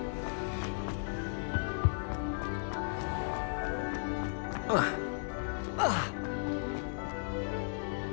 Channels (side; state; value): right; silent; digital silence